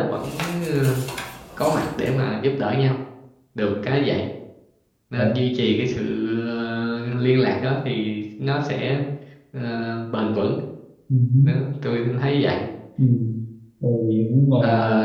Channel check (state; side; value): identical; both; correlation 1.00